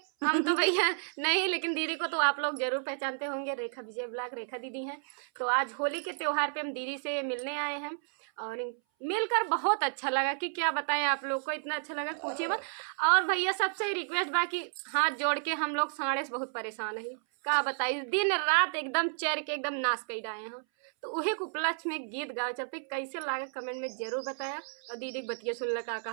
हम तो भैया नहीं, लेकिन दीदी को तो आप लोग ज़रूर पहचानते होंगे। रेखा विजय ब्लॉग, रेखा दीदी हैं। तो आज होली के त्यौहार पे हम दीदी से मिलने आए हैं और मिलकर बहुत अच्छा लगा कि क्या बताएं आप लोग को, इतना अच्छा लगा पूछिए मत। और भैया सबसे रिक्वेस्ट बा कि हाथ जोड़ के, हम लोग साढ़े से बहुत परेशान है, का बताइए, दिन रात एकदम चर के एकदम नाश कर आए हैं। तो उहे के उपलक्ष्य में गीत गाओ चलते, कैसे लागे कमेंट में जरूर बताया। और दीदी बतिया सुन लगा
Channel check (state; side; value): silent; left; 57 dB below the other